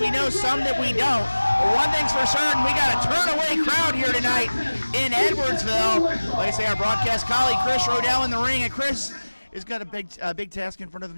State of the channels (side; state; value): both; inverted; correlation -1.00